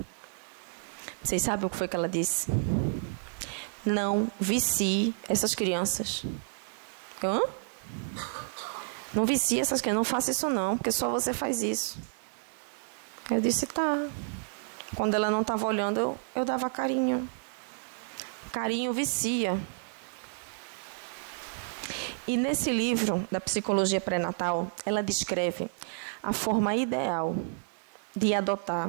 Vocês sabem o que foi que ela disse? Não vicie essas crianças. Hã? Não vicie essas crianças, não faça isso não, porque só você faz isso. Eu disse, tá. Quando ela não estava olhando, eu dava carinho. Carinho vicia. E nesse livro da psicologia pré-natal, ela descreve a forma ideal de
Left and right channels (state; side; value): silent; left; digital silence